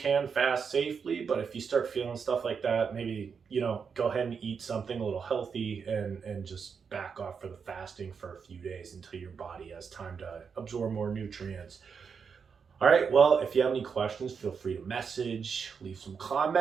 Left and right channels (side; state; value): left; quieter; 6.1 dB